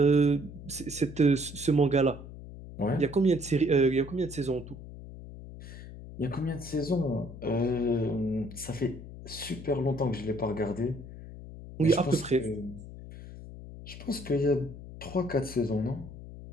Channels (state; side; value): noise; left; hum, 13 dB below the sound